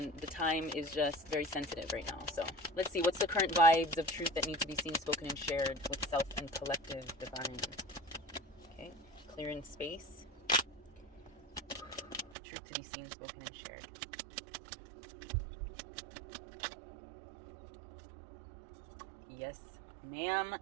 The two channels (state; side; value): drops out; left; at 12.4 s